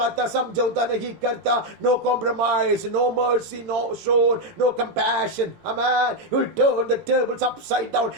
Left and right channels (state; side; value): late; left; 17 ms